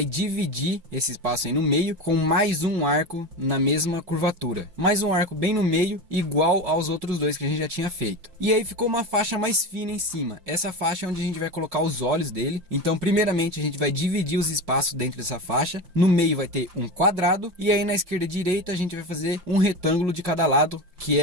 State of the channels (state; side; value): late; left; 5.4 ms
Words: dividir esse espaço aí no meio com mais um arco na mesma curvatura. Mais um arco bem no meio, igual aos outros dois que a gente já tinha feito. E aí ficou uma faixa mais fina em cima. Essa faixa é onde a gente vai colocar os olhos dele. Então, primeiramente, a gente vai dividir os espaços dentro dessa faixa. No meio vai ter um quadrado. E aí na esquerda e direita a gente vai fazer um retângulo de cada lado, que